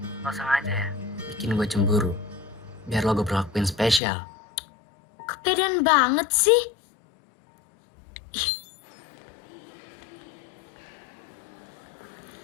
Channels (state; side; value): drops out; right; at 4.0 s